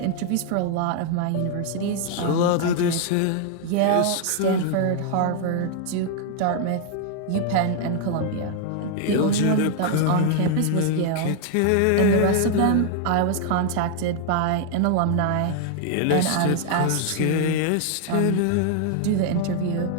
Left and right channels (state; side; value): different; both; correlation 0.00